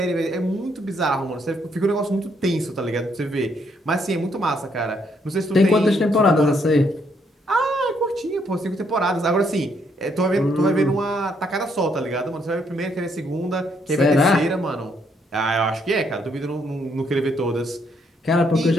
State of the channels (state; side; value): normal; both; correlation 0.72